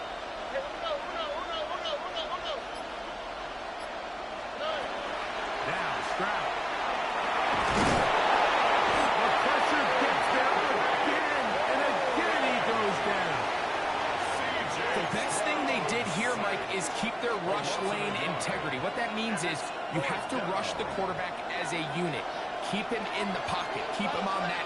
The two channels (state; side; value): identical; both; correlation 1.00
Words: Hey, uno. Now Stroud. The pressure integrity. What that means is you have to rush the quarterback as a unit. Keep him in the pocket. Keep him on that